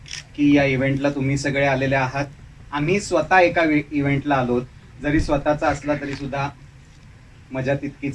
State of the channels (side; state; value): both; identical; correlation 1.00